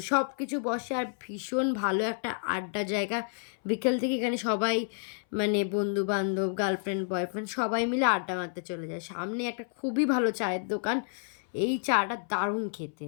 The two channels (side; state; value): right; silent; 58 dB below the other